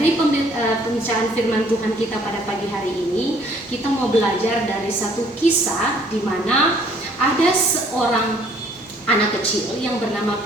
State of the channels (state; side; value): normal; both; correlation 0.60